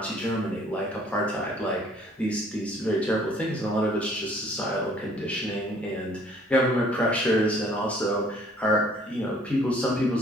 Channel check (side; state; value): both; normal; correlation 0.58